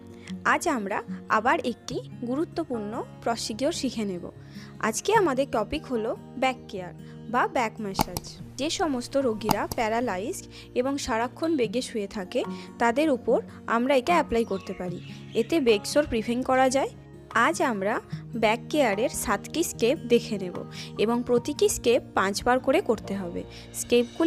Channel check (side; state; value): both; identical; correlation 1.00